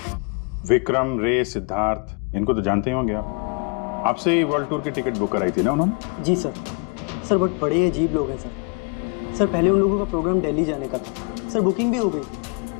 विक्रम, रे, सिद्धार्थ, इनको तो जानते ही होंगे आप। आपसे ही वर्ल्ड टूर की टिकट बुक कराई थी ना उन्होंने? जी सर। सर बहुत बड़े अजीब लोग हैं सर। सर पहले उन लोगों का प्रोग्राम दिल्ली जाने का था सर, बुकिंग भी हो गई,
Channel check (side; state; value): right; quieter; 34.4 dB